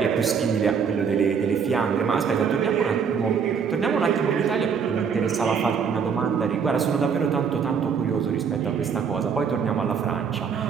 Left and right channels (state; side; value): quieter; left; 6.5 dB